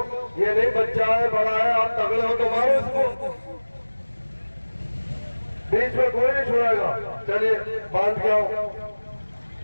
ये नहीं बच्चा है बड़ा है, आप तगड़े हो तो मारो इसको। बीच में कोई नहीं छोड़ेगा। चलिए बांध के आओ।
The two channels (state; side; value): inverted; both; correlation -1.00